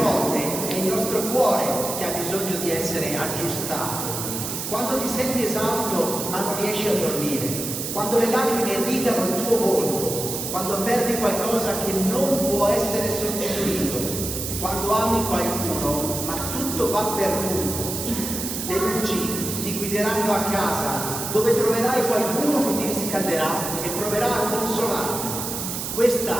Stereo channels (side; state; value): right; noise; hiss, 5 dB below the sound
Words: è il nostro cuore che ha bisogno di essere aggiustato. Quando ti senti esausto ma non riesci a dormire, quando le lacrime irrigano il tuo volto, quando perdi qualcosa che non può essere sostituito, quando ami qualcuno ma tutto va perduto, le luci ti guideranno a casa dove troverai qualcuno che ti riscalderà e proverà a consolarti. Questa